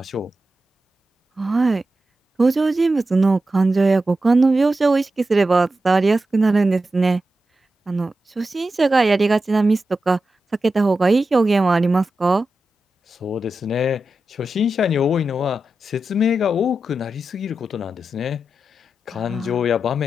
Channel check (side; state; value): both; normal; correlation 0.91